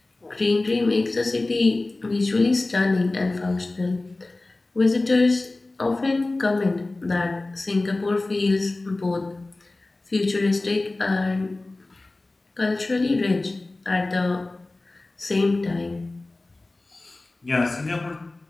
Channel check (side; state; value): right; quieter; 3.0 dB